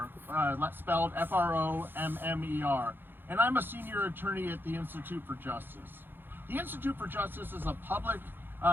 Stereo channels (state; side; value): late; left; 0.099 ms